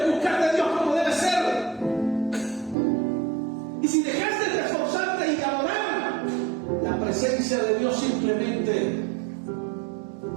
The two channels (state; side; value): drops out; left; at 2.8 s